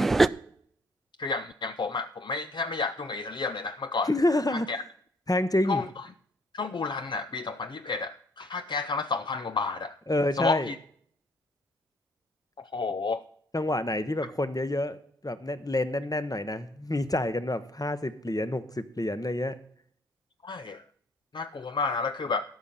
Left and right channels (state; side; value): normal; both; correlation 0.64